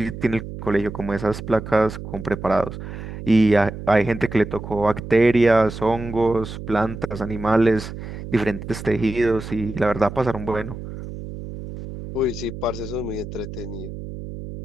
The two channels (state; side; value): noise; right; hum, 10 dB below the sound